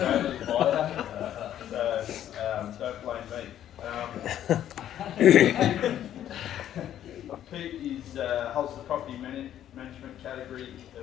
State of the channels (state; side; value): quieter; right; 11.2 dB